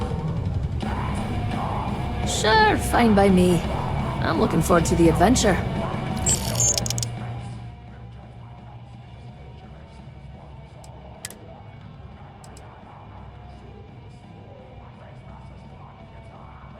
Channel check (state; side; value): identical; both; correlation 1.00